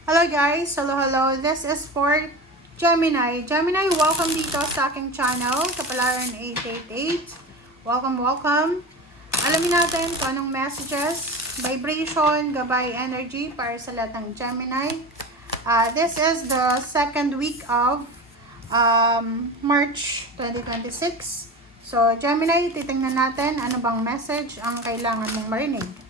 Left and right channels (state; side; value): normal; both; correlation 0.29